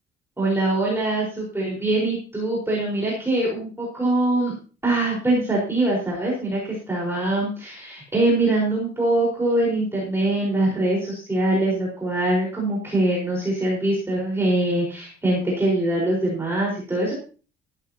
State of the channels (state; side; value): normal; both; correlation 0.57